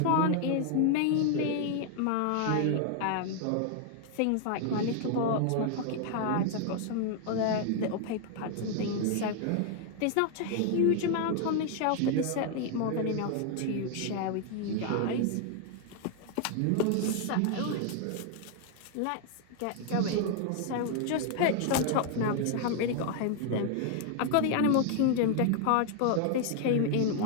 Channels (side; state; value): both; different; correlation 0.00